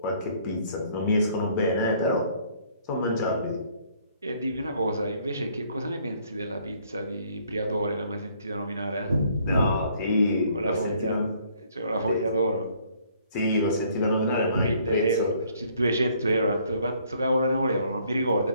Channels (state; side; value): inverted; both; correlation -0.63